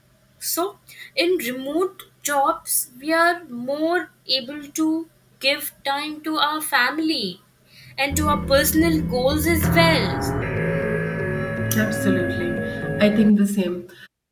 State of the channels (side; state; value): both; identical; correlation 1.00